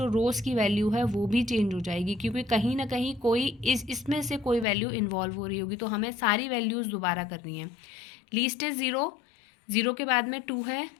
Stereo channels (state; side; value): drops out; right; at 4.7 s